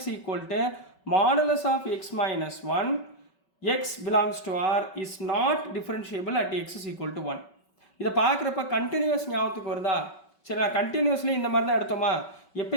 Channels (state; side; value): late; right; 5.3 ms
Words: equal to modulus of x minus 1 x belongs to r is not differentiable at x is equal to 1. இதை பார்க்குறப்ப continuous ஞாபகத்துக்கு வருதா? சரி, நான் continuously இந்த மாதிரி தான் எடுத்தோமா?